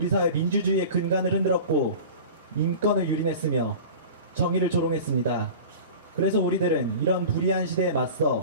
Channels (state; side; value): inverted; both; correlation -0.37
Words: 사회 민주주의의 근간을 흔들었고 인권을 유린했으며 정의를 조롱했습니다. 그래서 우리들은 이런 불의한 시대에